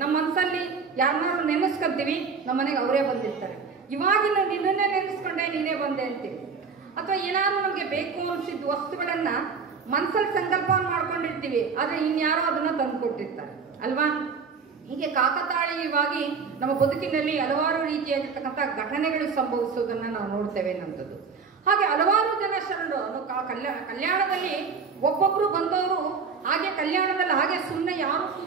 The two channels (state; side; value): quieter; left; 5.4 dB